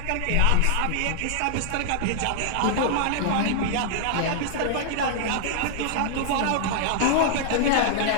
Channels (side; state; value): both; different; correlation -0.01